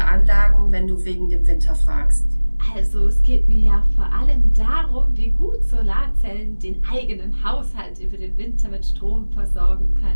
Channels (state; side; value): inverted; both; correlation -1.00